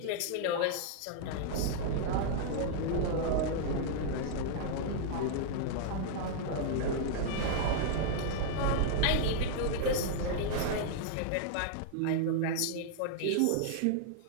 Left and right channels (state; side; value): different; both; correlation -0.01